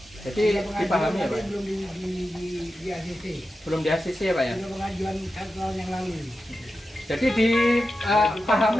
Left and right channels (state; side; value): normal; both; correlation 0.91